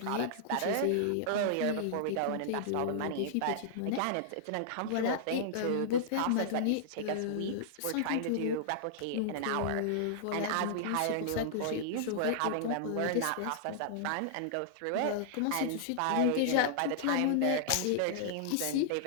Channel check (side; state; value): both; different; correlation -0.01